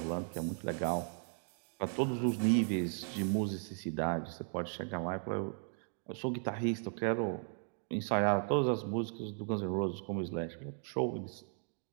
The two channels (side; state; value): left; silent; 53 dB below the other